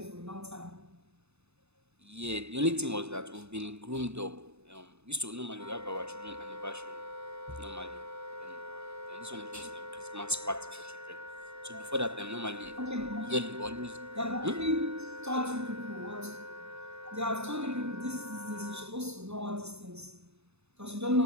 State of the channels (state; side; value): late; left; 0.80 ms